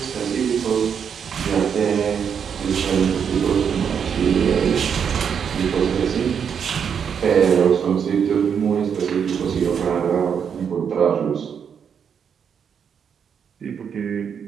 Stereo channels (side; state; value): left; quieter; 7.4 dB